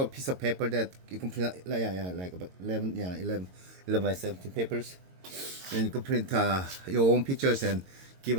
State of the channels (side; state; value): left; late; 22 ms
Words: piece of paper that you can print, like about 11 by 17 papers, and you can print your own pictures and give